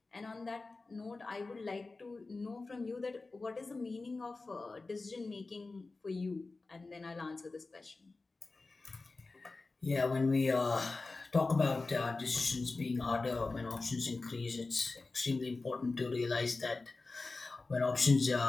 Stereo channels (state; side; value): quieter; right; 3.6 dB